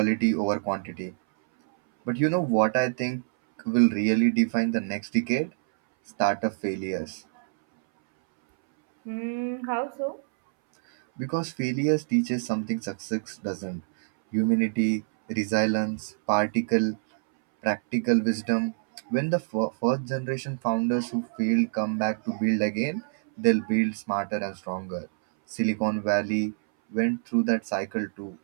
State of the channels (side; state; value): left; silent; 61 dB below the other